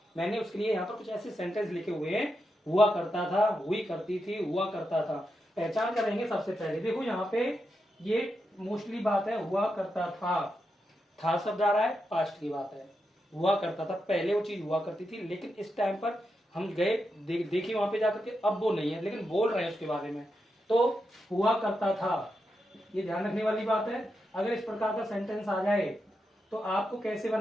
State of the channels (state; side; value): normal; both; correlation 0.86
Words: मैंने उसके लिए यहाँ पर कुछ ऐसे सेंटेंस लिखे हुए हैं। हुआ करता था, हुई करती थी, हुआ करता था। पहचान करेंगे सबसे पहले। देखो यहाँ पे ये मोस्टली बात है हुआ करता था शब्द आ रहा है, पास्ट की बात है। हुआ करता था, पहले वो चीज हुआ करती थी लेकिन इस टाइम पर हम गए देखिए वहां पे जाकर के अब वो नहीं है, लेकिन बोल रहे हैं उसके बारे में। तो हुआ करता था, ये ध्यान रखने वाली बात है। अगर इस प्रकार का सेंटेंस आ जाए तो आपको कैसे